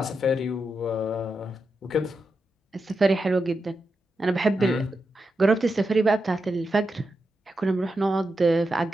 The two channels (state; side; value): normal; both; correlation 0.87